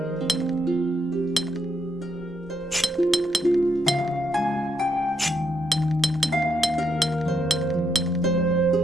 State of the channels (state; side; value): normal; both; correlation 0.78